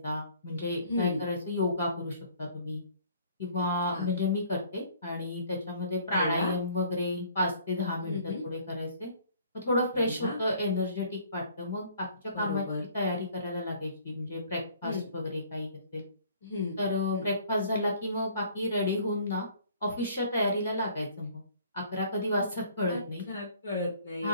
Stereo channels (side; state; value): both; inverted; correlation -0.56